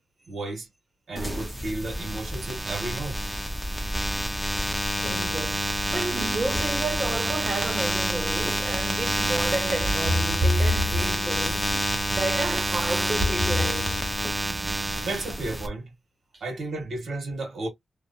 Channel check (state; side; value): normal; both; correlation 0.92